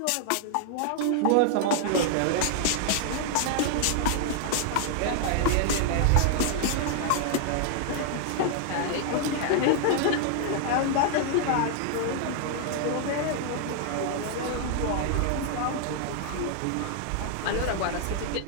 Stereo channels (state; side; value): different; both; correlation 0.00